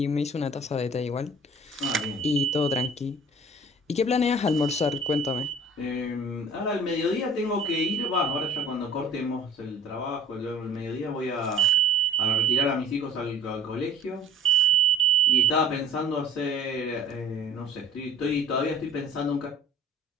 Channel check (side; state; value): both; normal; correlation 0.50